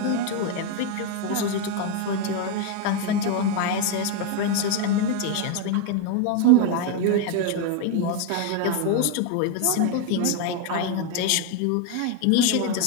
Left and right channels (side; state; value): both; different; correlation 0.01